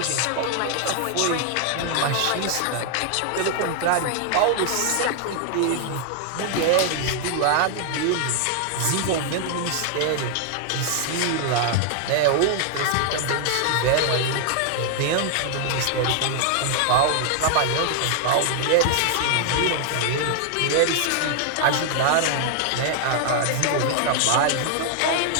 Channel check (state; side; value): different; both; correlation 0.00